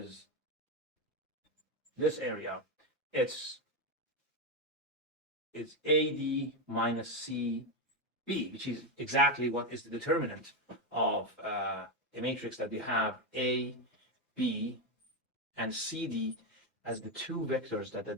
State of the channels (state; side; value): normal; both; correlation 0.09